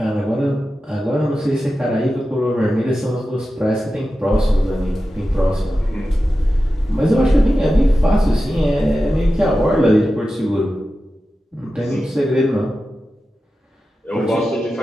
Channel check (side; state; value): both; normal; correlation 0.93